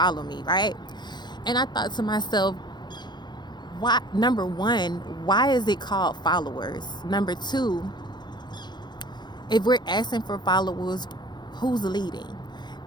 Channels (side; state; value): right; late; 0.21 ms